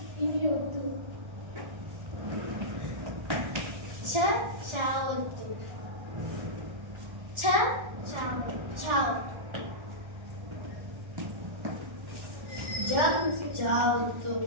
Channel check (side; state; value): left; late; 1.4 ms